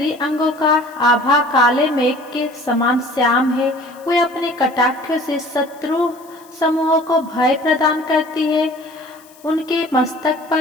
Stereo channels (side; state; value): left; noise; hiss, 26 dB below the sound